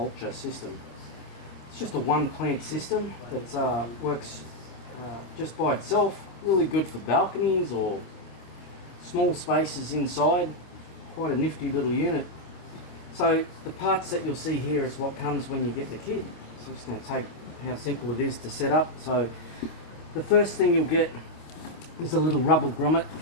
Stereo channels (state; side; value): late; right; 25 ms